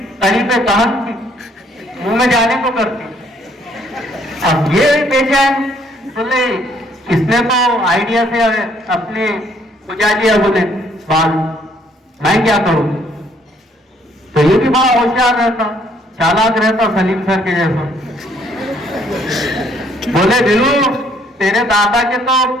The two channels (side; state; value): both; normal; correlation 0.65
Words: कहन थी, मुंह में जाने को करती। अब ये बेचैन, बोले इसने तो आइडिया से अपने बुझा दिया। बोले बाल, मैं क्या करूं? तो ये भी बड़ा होशियार रहता, चालाक रहता, सलीम सर के जैसा। बोले बिल्लू तेरे दादा के तो